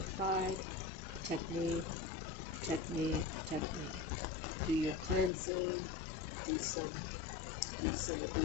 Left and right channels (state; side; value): drops out; right; at 5.3 s